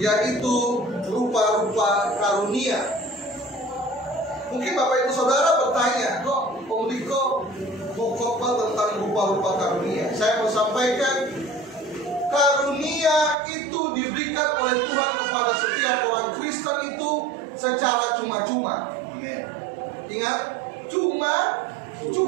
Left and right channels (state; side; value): drops out; left; at 13.4 s